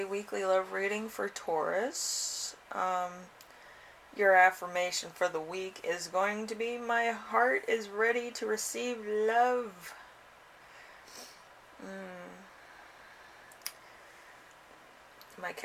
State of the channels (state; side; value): identical; both; correlation 1.00